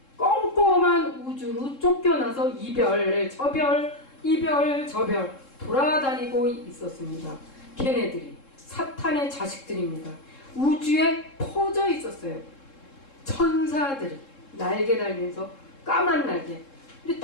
꼼꼼한 우주로 쫓겨나서 이별, 저별 돌아다니고 있었습니다. 걔네들이 사탄의 자식들입니다. 우주에 퍼져 있었어요. 천사들이 날개 달면서 까만 날개. 근데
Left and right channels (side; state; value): right; late; 3.7 ms